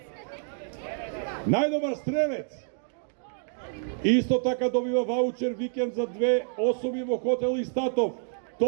Најдобар стрелец. Исто така добива ваучер викенд за две особи во хотел Истатов.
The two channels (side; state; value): left; silent; digital silence